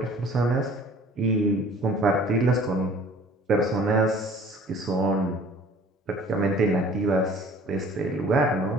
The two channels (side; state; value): both; normal; correlation 0.50